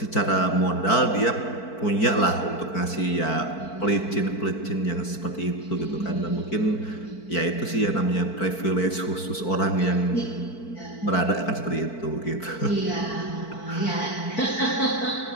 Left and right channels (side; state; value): right; late; 4.5 ms